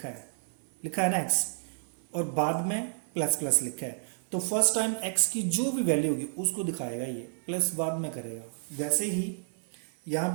है ना एक्स, और बाद में प्लस प्लस लिखा है, तो फर्स्ट टाइम एक्स की जो भी वैल्यू होगी उसको दिखाएगा, ये प्लस बाद में करेगा। वैसे ही यहाँ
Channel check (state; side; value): silent; left; 55 dB below the other